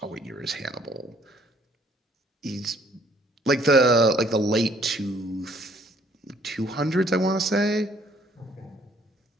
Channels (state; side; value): normal; both; correlation 0.62